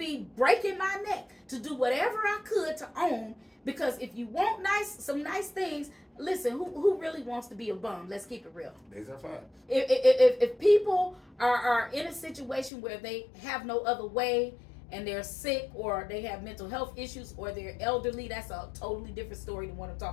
breaking my neck to do whatever I could to own, because if you want some nice things, listen, who really wants to be a bum? Let's keep it real. These are facts. If people are in a situation where they have no other way and they're sick or they have mental health issues or they're elderly, that's a totally different story than what I'm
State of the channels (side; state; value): right; drops out; at 12.7 s